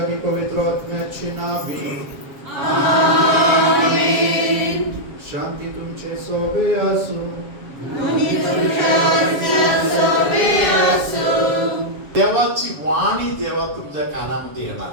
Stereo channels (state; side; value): late; left; 7.5 ms